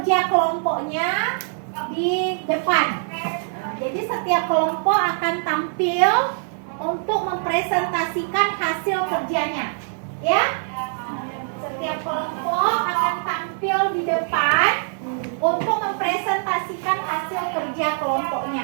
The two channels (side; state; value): left; silent; digital silence